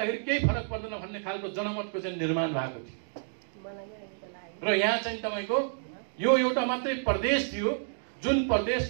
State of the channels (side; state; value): left; silent; digital silence